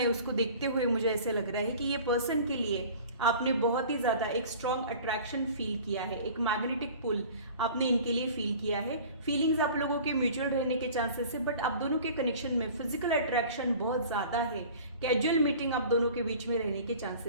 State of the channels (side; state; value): both; inverted; correlation -0.44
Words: उसको देखते हुए मुझे ऐसे लग रहा है कि ये पर्सन के लिए आपने बहुत ही ज्यादा एक स्ट्रॉन्ग अट्रैक्शन फील किया है, एक मैग्नेटिक पुल आपने इनके लिए फील किया है। फीलिंग्स आप लोगों के म्यूचुअल रहने के चांसेस है, बट आप दोनों के कनेक्शन में फिजिकल अट्रैक्शन बहुत ज्यादा है। कैजुअल मीटिंग आप दोनों के बीच में रहने के